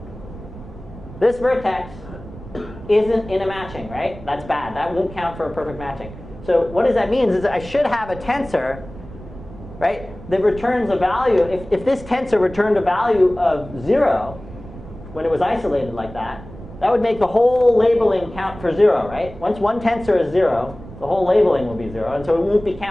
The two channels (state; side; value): noise; right; rumble, 15 dB below the sound